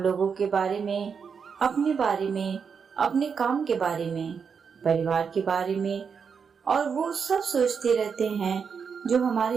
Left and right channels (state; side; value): quieter; left; 6.2 dB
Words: के बारे में, अपने बारे में, अपने काम के बारे में, परिवार के बारे में और वो सब सोचते रहते हैं जो